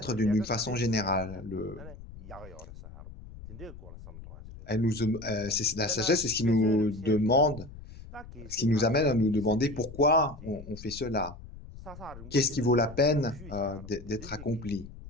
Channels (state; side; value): noise; left; rumble, 15 dB below the sound